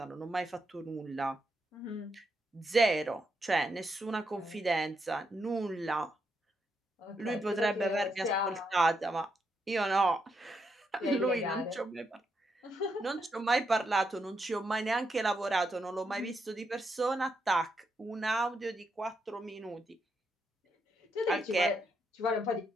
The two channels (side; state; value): both; normal; correlation 0.80